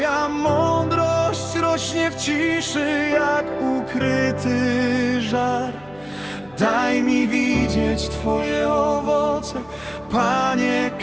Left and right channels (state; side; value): noise; left; hum, 27 dB below the sound